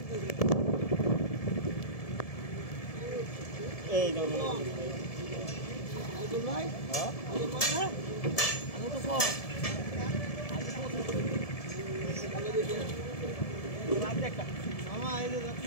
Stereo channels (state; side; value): late; right; 1.7 ms